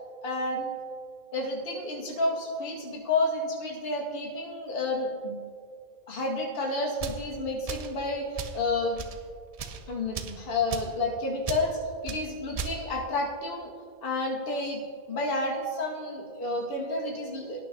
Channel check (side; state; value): right; late; 1.7 ms